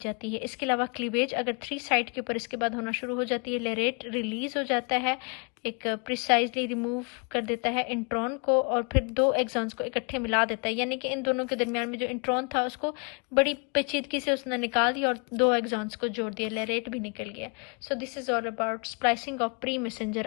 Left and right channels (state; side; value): quieter; right; 35.3 dB